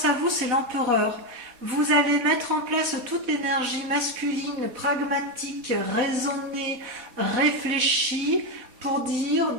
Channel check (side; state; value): left; late; 4.0 ms